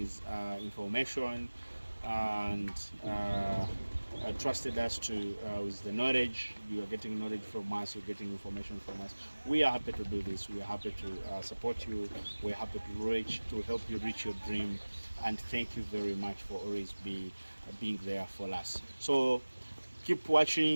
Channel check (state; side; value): inverted; both; correlation -1.00